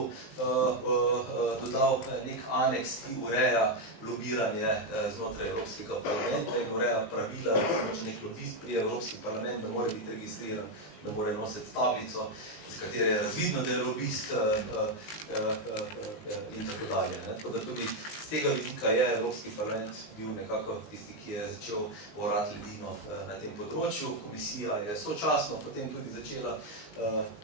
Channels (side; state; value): right; late; 19 ms